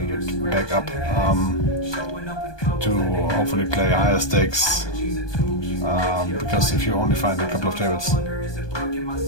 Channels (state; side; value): late; right; 1.2 ms